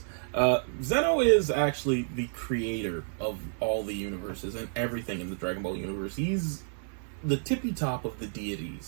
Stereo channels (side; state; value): left; silent; 58 dB below the other